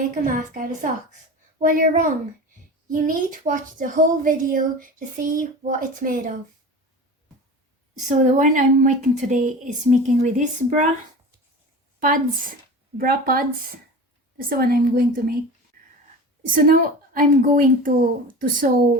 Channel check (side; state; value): both; normal; correlation 0.33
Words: a mask out of socks. Well, you're wrong. You need to watch the whole video to see what it's made of. So the one I'm making today is making with this bra pads. That's the one I'm going to make. So now I'm going to